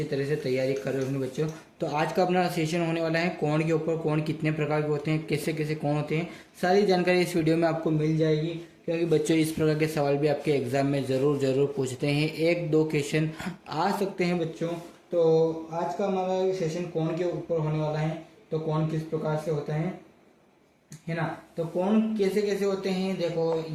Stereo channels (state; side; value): identical; both; correlation 1.00